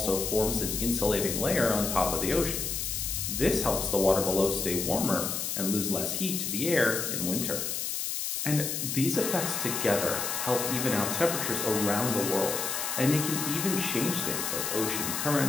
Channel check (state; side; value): noise; left; hiss, 2 dB below the sound